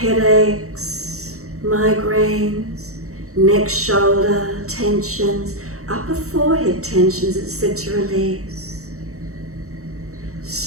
headaches, migraines, neck, shoulder tensions, upper forehead tensions, it's said to release.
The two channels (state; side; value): late; left; 0.64 ms